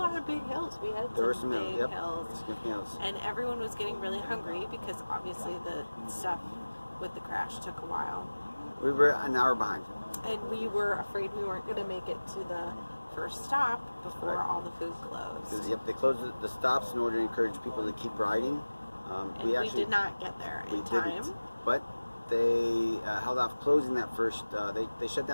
of big hills. We had some big hills, and everyone was getting really hungry because obviously the stuff with the crash took a while. We were an hour behind. And we were afraid we weren't going to make it to the first stop before all the food closed. Yep, they closed the stops in order to encourage people to keep riding. And we did not get there in time. But they held off closing that first. They shut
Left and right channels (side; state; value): both; inverted; correlation -1.00